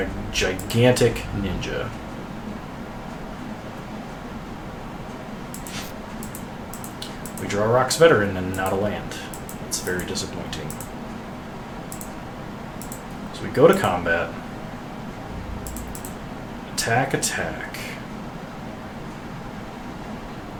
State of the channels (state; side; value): identical; both; correlation 1.00